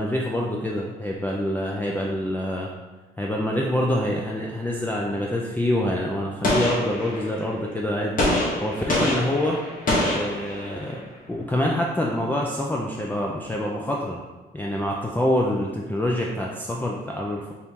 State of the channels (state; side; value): normal; both; correlation 0.67